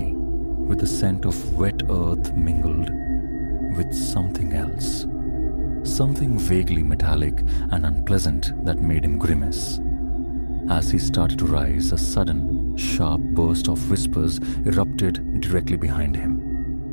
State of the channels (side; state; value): both; inverted; correlation -1.00